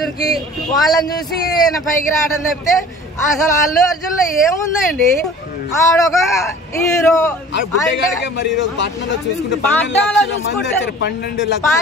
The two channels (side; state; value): both; normal; correlation 0.45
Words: కి. వాళ్ళని చూసి పైకి రావడం తప్పితే అసలు అల్లు అర్జున్ లో ఏముందండి, ఆడొక హీరో.